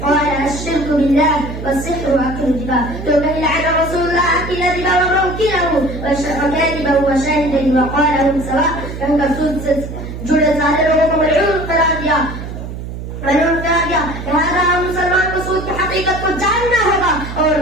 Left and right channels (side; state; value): right; noise; hum, 9 dB below the sound